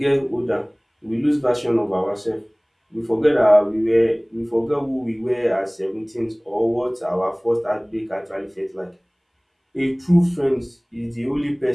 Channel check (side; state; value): both; identical; correlation 1.00